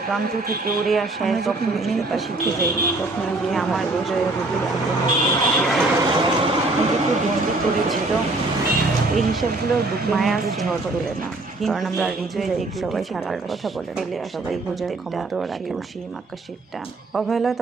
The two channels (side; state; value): left; quieter; 3.0 dB